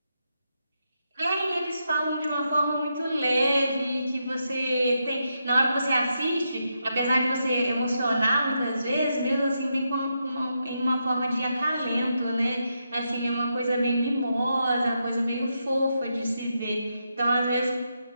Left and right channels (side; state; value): both; inverted; correlation -0.83